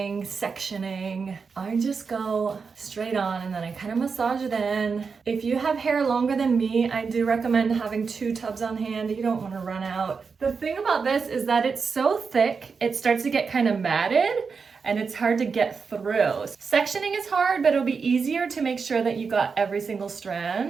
sectioning. I just go straight on and then I kind of massage it in. If you have hair longer than me, I do recommend having 2 tubs on hand. You don't want to run out. The thing about this is that it's so thick, it starts to get kind of matted and it's hard to get through. Sectioning is hard, but it'll be easier to make sure that you got every single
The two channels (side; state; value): left; quieter; 5.3 dB